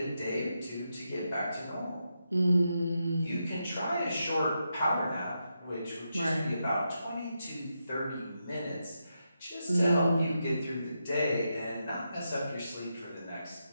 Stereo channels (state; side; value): inverted; both; correlation -0.85